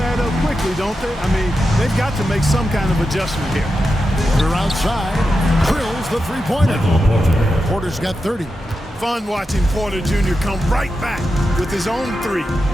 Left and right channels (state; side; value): normal; both; correlation 0.89